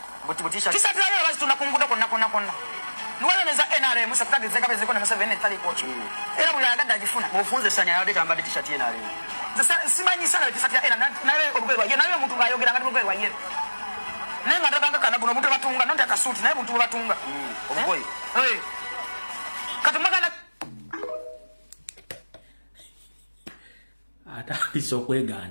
butishati tisati leo basi tunakunguda konna nuwale neza NRM musapitagi zeka bezeko na 7 tali coach era buli agada ajifuna mufunze sanya yade kamba t-shirt NRM simanyi sana t-shirt ya NRM nawe obugwe waye nawe muntu ngayogera ngati obugwe waye nenga ndabanga kana buno muntu batunga nonde akasuti nawe muntu batunga obugwe katumagana atandise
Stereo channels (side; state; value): both; inverted; correlation -1.00